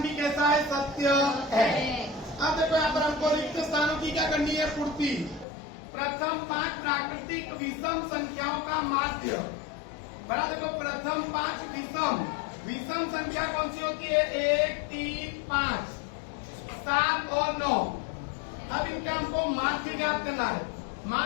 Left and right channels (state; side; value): drops out; right; at 5.5 s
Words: भी कैसा है? सत्य है। अब देखो यहाँ पर हमको रिक्त स्थानों की क्या करनी है? पूर्ति। प्रथम 5 प्राकृतिक विषम संख्याओं का माध्य, बड़ा देखो प्रथम 5 विषम संख्या कौन सी होती है? 1, 3, 5, 7 और 9। अब इनका हमको माध्य ज्ञात करना है।